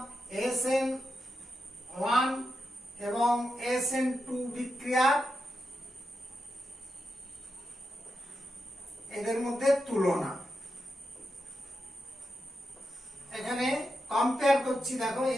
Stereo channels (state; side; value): normal; both; correlation 0.87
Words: SN1 এবং SN2 বিক্রিয়া এদের মধ্যে তুলনা এখানে কম্পেয়ার করছি। দেখো